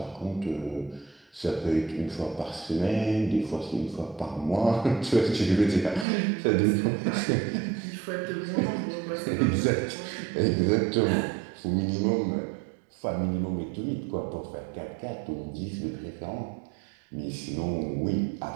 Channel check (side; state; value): left; drops out; at 6.1 s